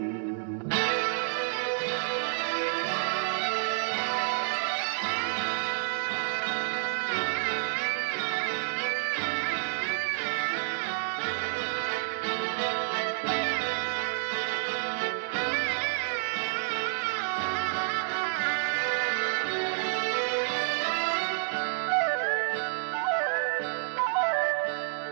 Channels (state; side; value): silent; left; 58 dB below the other